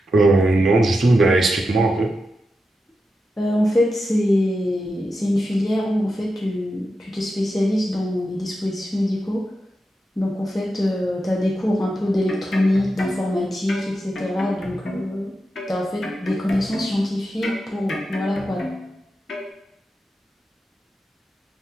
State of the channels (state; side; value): normal; both; correlation 0.89